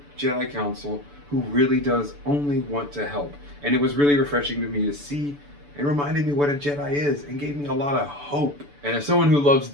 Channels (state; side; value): late; left; 6.9 ms